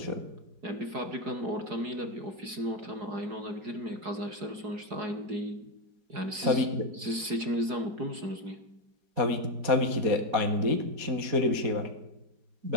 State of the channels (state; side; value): late; left; 4.8 ms